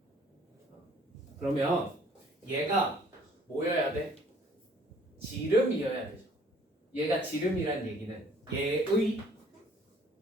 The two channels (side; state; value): both; normal; correlation 0.58